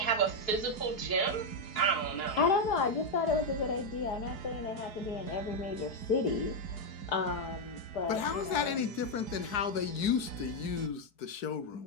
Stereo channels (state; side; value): late; right; 4.7 ms